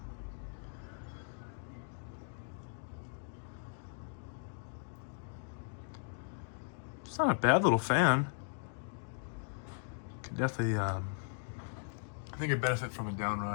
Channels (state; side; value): silent; right; digital silence